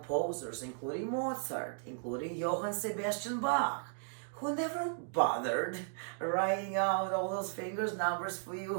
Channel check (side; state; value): left; silent; digital silence